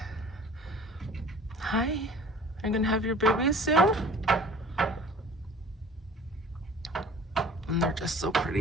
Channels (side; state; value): both; normal; correlation 0.47